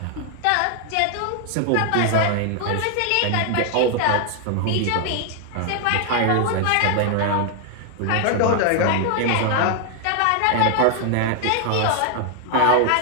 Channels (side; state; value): both; different; correlation 0.00